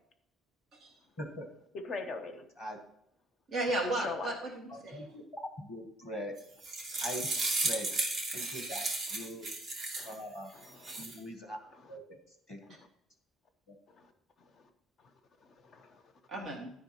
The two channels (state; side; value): normal; both; correlation 0.59